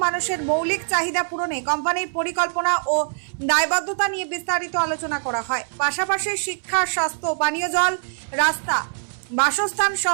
মানুষের মৌলিক চাহিদা পূরণে কোম্পানির পরিকল্পনা ও দায়বদ্ধতা নিয়ে বিস্তারিত আলোচনা করা হয়। পাশাপাশি শিক্ষা, স্বাস্থ্য, পানীয় জল, রাস্তা, বাসস্থান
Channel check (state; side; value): silent; left; 63 dB below the other